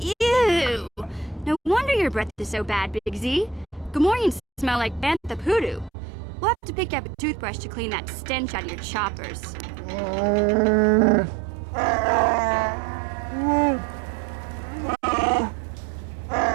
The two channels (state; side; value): drops out; left; at 5.9 s